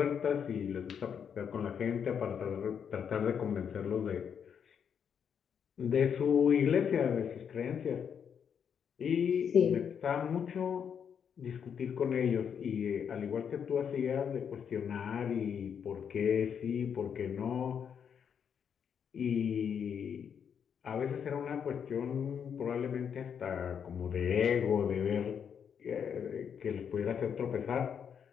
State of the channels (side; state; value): right; quieter; 7.6 dB